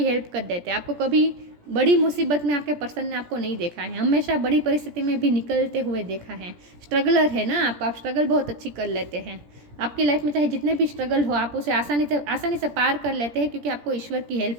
हेल्प कर देते हैं। आपको कभी बड़ी मुसीबत में आपके पर्सन ने आपको नहीं देखा है, हमेशा बड़ी परिस्थिति में भी निकलते हुए देखा है। स्ट्रगलर है ना आप स्ट्रगल बहुत अच्छी कर लेते हैं। आपकी लाइफ में चाहे जितने भी स्ट्रगल हो, आप उसे आसानी से पार कर लेते हैं, क्योंकि आपको ईश्वर की हेल्प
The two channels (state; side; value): late; left; 17 ms